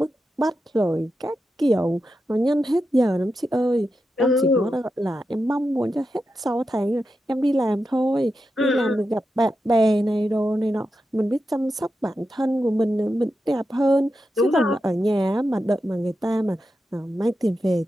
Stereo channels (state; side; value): normal; both; correlation 0.89